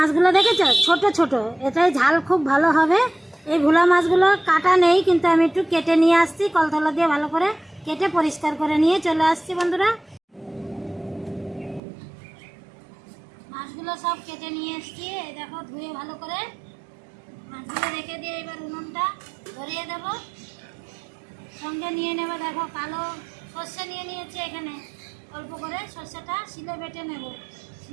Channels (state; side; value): drops out; left; at 11.8 s